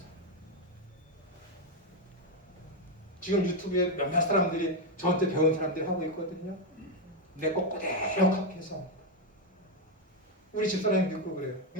지금 유튜브에 몇몇 사람들이 저한테 배운 사람들이 하고 있거든요. 내 거 그대로 카피해서 우리 집사람이 믿고 그래요.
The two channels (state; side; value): normal; both; correlation 0.05